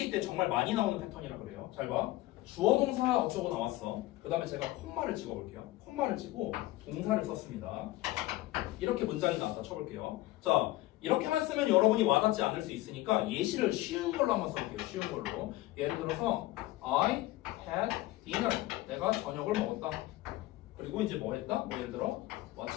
때 정말 많이 나오는 패턴이라 그래요. 잘 봐. 주어 동사 어쩌고 나왔어. 그 다음에 제가 콤마를 찍어볼게요. 콤마를 찍고 동사를 썼습니다. 이렇게 문장이 나왔다 쳐볼게요. 자, 이렇게만 쓰면 여러분이 와닿지 않을 수 있으니까 예시를 쉬운 걸로 한번 써볼게요. 쉬운 걸로. 예를 들어서 I had dinner. 내가 저녁을 먹었다. 그리고 이제 뭐 했다? 뭐 예를 들어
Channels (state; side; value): quieter; right; 17.6 dB